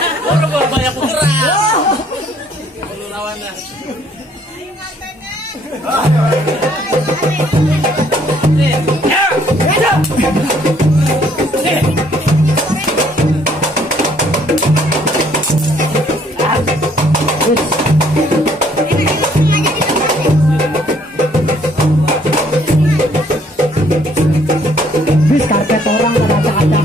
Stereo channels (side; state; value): both; normal; correlation 0.63